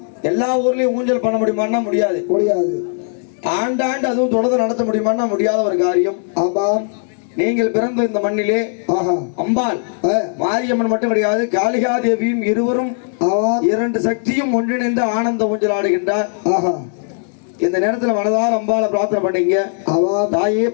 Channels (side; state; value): right; silent; 59 dB below the other